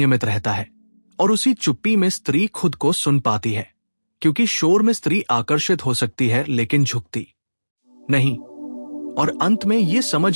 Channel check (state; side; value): inverted; both; correlation -1.00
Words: रहता है, और उसी चुप्पी में स्त्री खुद को सुन पाती है, क्योंकि शोर में स्त्री आकर्षित हो सकती है लेकिन झुकती नहीं। और अंत में ये